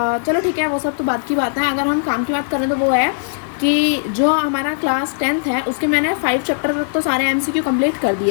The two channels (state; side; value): silent; right; digital silence